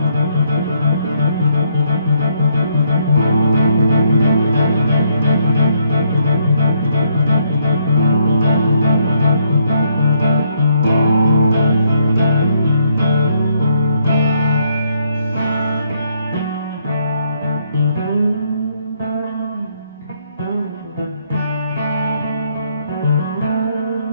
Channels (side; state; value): both; inverted; correlation -0.72